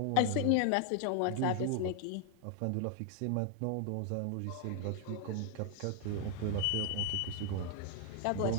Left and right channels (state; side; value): different; both; correlation 0.00